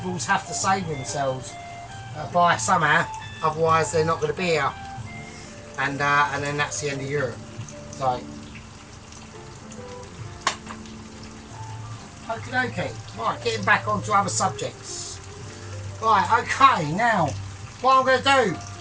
have to save themselves by somehow, otherwise they're not going to be here, and then that's the end of Europe. So, okie dokie, right, getting back onto other subjects. Right, okay, now, what I'm going to do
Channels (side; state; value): both; identical; correlation 1.00